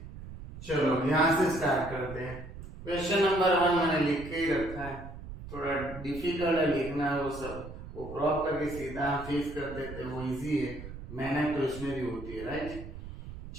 चलो यहाँ से स्टार्ट करते हैं। क्वेश्चन नंबर 1 मैंने लिख के ही रखा है, थोड़ा डिफिकल्ट है लिखना, वो सब वो क्रॉप करके सीधा फेस कर देते हैं, वो इजी है, मेहनत तो इसमें भी होती है, राइट।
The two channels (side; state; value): right; noise; rumble, 12 dB below the sound